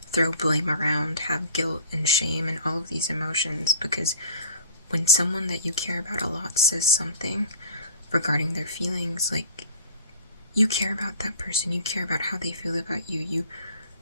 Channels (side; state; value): both; inverted; correlation -0.47